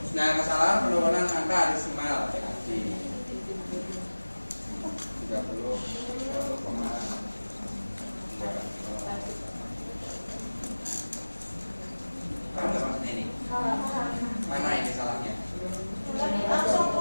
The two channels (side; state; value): both; inverted; correlation -1.00